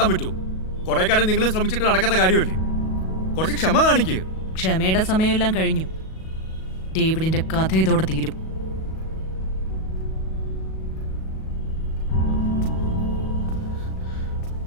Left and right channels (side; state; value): right; late; 37 ms